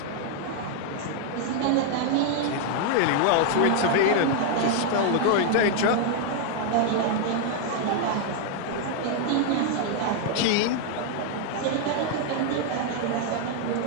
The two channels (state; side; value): different; both; correlation 0.00